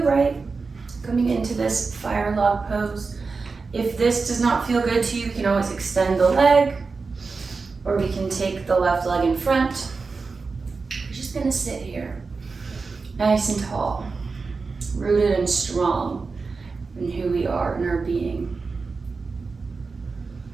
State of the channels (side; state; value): left; quieter; 4.4 dB